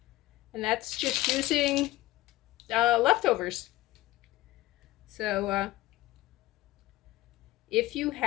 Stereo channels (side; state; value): right; quieter; 17.1 dB